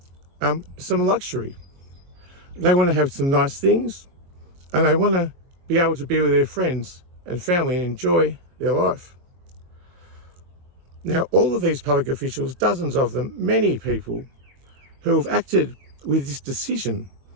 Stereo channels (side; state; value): left; late; 22 ms